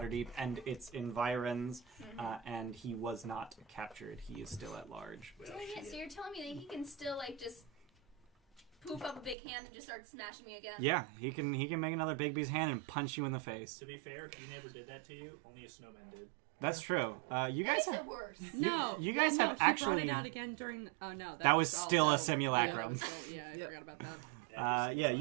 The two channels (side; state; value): left; drops out; at 9.3 s